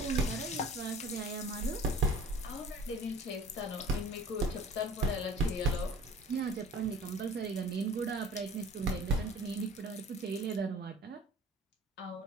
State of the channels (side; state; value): both; normal; correlation 0.45